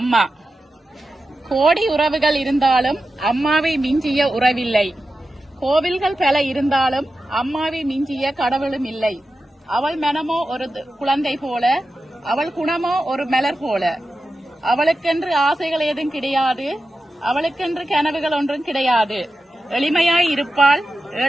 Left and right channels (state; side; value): normal; both; correlation 0.92